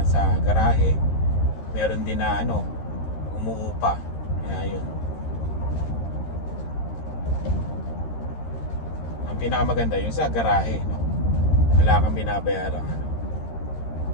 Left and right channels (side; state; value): right; late; 13 ms